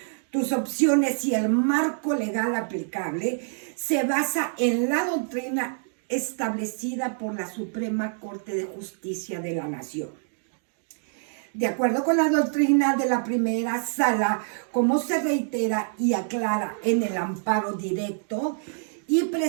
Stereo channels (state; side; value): silent; left; digital silence